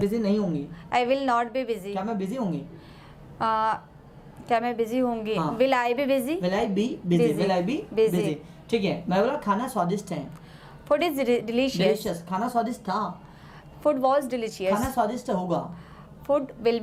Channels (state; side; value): identical; both; correlation 1.00